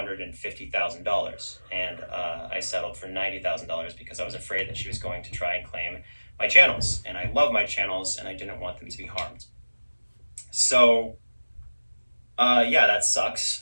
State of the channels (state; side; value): inverted; both; correlation -1.00